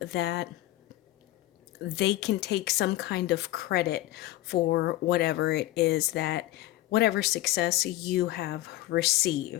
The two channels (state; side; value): quieter; right; 16.0 dB